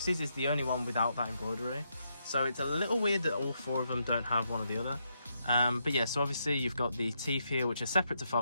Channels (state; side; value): inverted; both; correlation -0.79